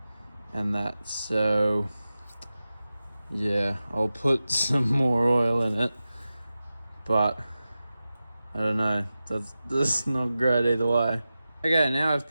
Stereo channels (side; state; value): both; inverted; correlation -0.94